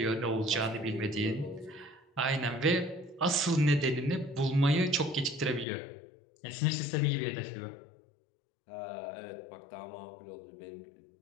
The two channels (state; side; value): drops out; right; at 5.7 s